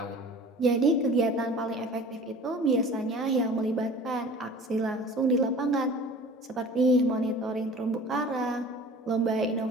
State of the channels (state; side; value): normal; both; correlation 0.43